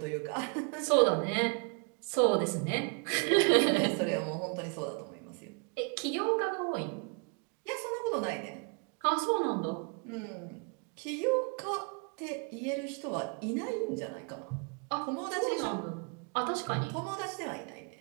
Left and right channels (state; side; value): quieter; left; 36.5 dB